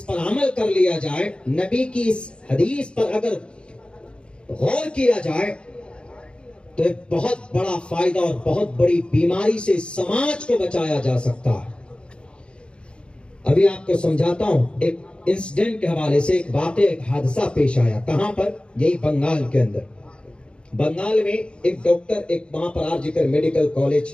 پر عمل کر لیا جائے، نبی کی اس حدیث پر اگر غور کیا جائے تو ایک بہت بڑا فائدہ اور بہت بڑی بیماری سے سماج کو بچایا جا سکتا ہے. ابھی آپ کو سمجھاتا ہوں ایک انسیڈنٹ کے حوالے سے، ایک واقعہ، ایک حادثہ پیش آیا. کہاں پر؟ یہی بنگال کے اندر. بنگال میں ایک ڈاکٹر، ایک وہاں پر آرجیکر میڈیکل کالج،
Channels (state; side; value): late; right; 0.055 ms